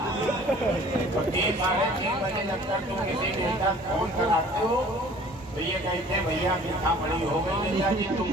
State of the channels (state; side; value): normal; both; correlation 0.50